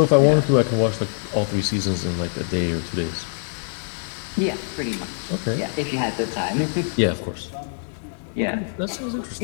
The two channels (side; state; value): right; silent; digital silence